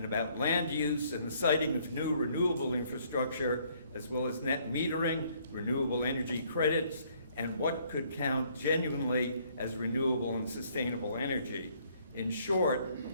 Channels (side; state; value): both; inverted; correlation -0.64